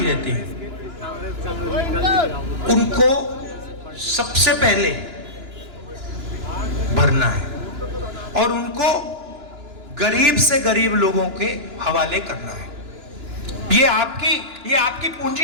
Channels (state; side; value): late; left; 2.9 ms